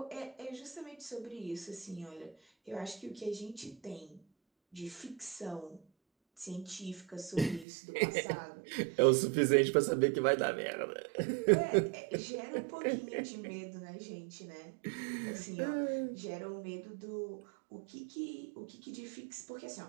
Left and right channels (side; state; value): left; drops out; at 7.7 s